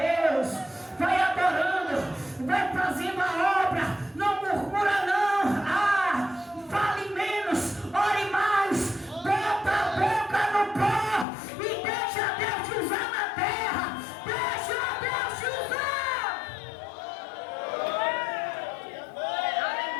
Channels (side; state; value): right; drops out; at 11.2 s